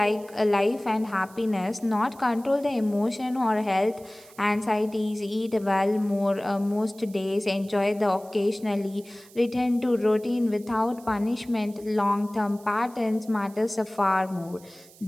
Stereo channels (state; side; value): noise; right; hiss, 24 dB below the sound